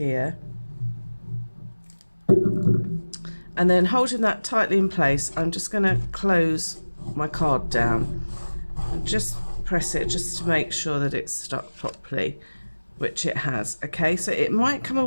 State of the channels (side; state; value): both; inverted; correlation -1.00